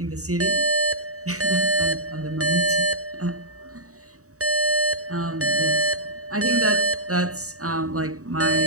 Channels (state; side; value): late; left; 0.65 ms